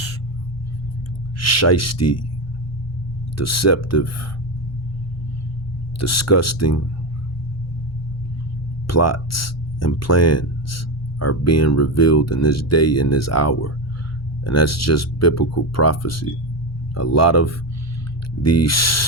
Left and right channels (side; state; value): both; normal; correlation 0.15